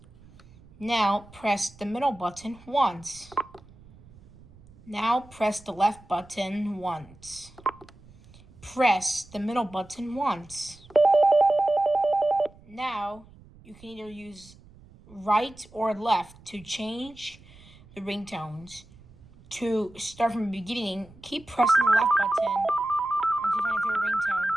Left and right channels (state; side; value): noise; right; rumble, 24 dB below the sound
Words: Now press the middle button once. Now press the left button once. Press the middle button once. Now you can either use right or left to change the ringtones. To start from the beginning, keep pressing the left button until you find your favorite ringtone.